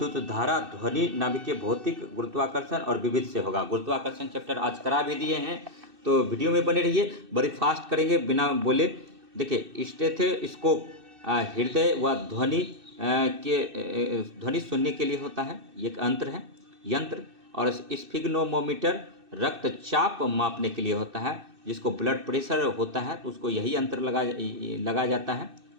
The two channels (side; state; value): left; late; 2.6 ms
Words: धारा, ध्वनि, नाभिकीय भौतिक, गुरुत्वाकर्षण और विविध से होगा। गुरुत्वाकर्षण चैप्टर आज करा भी दिए हैं, तो वीडियो में बने रहिए। बड़ी फास्ट करेंगे बिना बोले। देखिए, स्टेथोस्कोप हृदय व ध्वनि ध्वनि सुनने के लिए होता है, ये एक यंत्र। और स्फिग्नोमोमीटर रक्तचाप मापने के लिए होता है। जिसको ब्लड प्रेशर होता है तो उसको यही यंत्र लगाया जाता है,